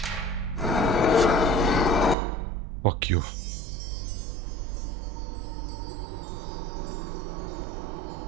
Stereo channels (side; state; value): left; drops out; at 2.1 s